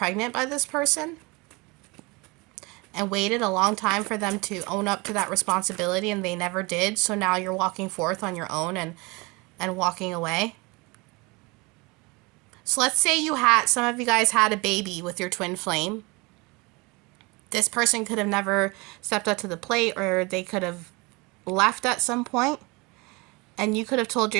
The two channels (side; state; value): left; quieter; 26.1 dB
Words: by this person and waited a long time for them to own up to that responsibility, and they never did. So now you're walking forth on your own and walking away. So let's say some of you guys had a baby with your twin flame. This person could have never stepped up to the plate, or they could have left at some point. And you could have told